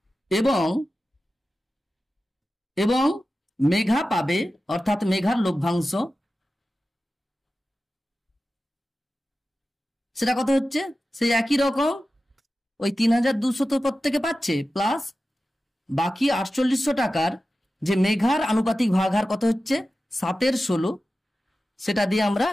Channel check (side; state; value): both; normal; correlation 0.94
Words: এবং মেঘা পাবে অর্থাৎ মেঘার লভ্যাংশ সেটা কত হচ্ছে, সেই একই রকম ওই 3,200 তো প্রত্যেকে পাচ্ছে, প্লাস বাকি 4800 টাকার যে মেঘার আনুপাতিক ভাগহার কত হচ্ছে 7/16, সেটা দিয়ে আমরা